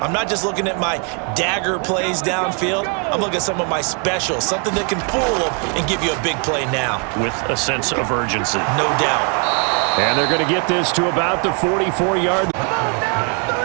not just looking at my dagger plays downfield. I'm looking at some of my specials, something that can fool them and give you a big play now. With a sense of urgency. No doubt. And they're going to get this to about the 44-yard.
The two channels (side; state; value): left; quieter; 38.9 dB